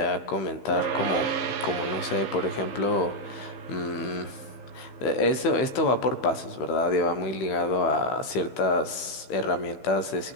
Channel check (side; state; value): right; late; 15 ms